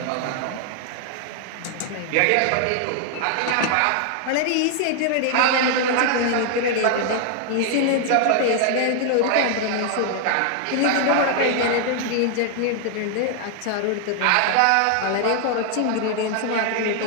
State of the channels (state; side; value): different; both; correlation 0.00